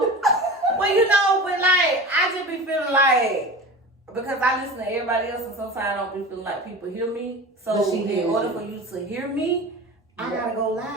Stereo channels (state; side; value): normal; both; correlation 0.33